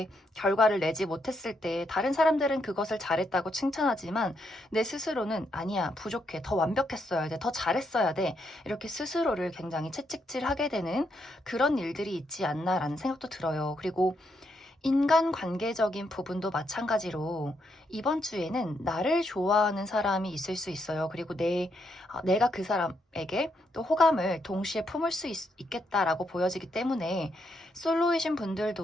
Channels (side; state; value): both; normal; correlation 0.78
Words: 결과를 내지 못했을 때 다른 사람들은 그것을 잘했다고 칭찬하지만 내 스스로는 아니야, 부족해, 더 완벽했어야 돼, 더 잘했어야 돼, 이렇게 스스로를 굉장히 채찍질하게 되는 그런 일들이 있지 않나라는 생각도 들어요. 그리고 인간관계적인 부분도 마찬가지로 이번 주에는 나를 좋아하는 사람이 있을 수 있어요. 그리고 내가 그 사람에게 또 호감을 동시에 품을 수 있겠다라고 보여지기 때문에, 솔로이신